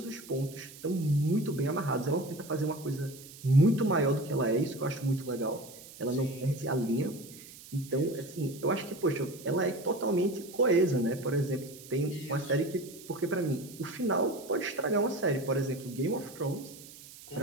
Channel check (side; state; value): right; noise; hiss, 18 dB below the sound